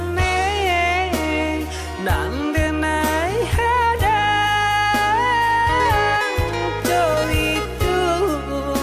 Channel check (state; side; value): identical; both; correlation 1.00